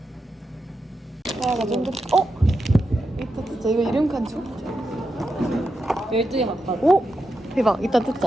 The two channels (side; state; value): both; normal; correlation 0.87